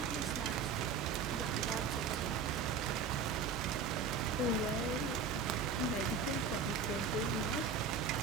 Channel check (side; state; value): left; quieter; 5.3 dB